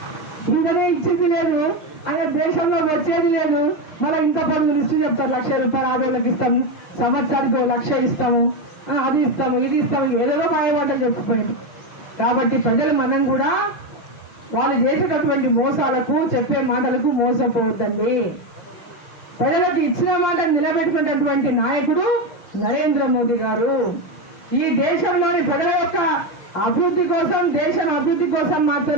ఇంకనే ఇచ్చింది లేదు, అదే దేశంలో వచ్చేది లేదు. మళ్ళీ ఇంత పనులు లిస్టు చెప్తారు, 1,00,000 రూపాయలు ఆడవాళ్ళకి ఇస్తాము, సంవత్సరానికి 1,00,000 ఇస్తాము, అది ఇస్తాము, ఇది ఇస్తాము, ఏదో మాయమాటలు చెప్పిపోయింది. కాబట్టి ప్రజలు మనం కూడా వాళ్ళు చేసేటటువంటి మోసాలకు, చెప్పే మాటలకు మోసపోవద్దండి. ప్రజలకు ఇచ్చిన మాట నిలబెట్టుకునేటటువంటి నాయకుడు నరేంద్ర మోదీ గారు. ఈ దేశంలోని ప్రజల యొక్క అభివృద్ధి కోసం, దేశం అభివృద్ధి కోసం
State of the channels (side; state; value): right; late; 6.1 ms